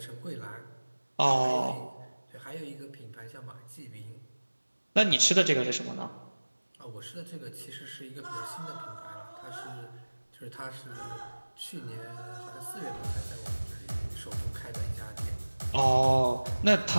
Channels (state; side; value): inverted; both; correlation -1.00